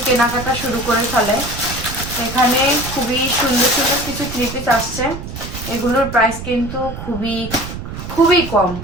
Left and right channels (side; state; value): right; noise; rumble, 9 dB below the sound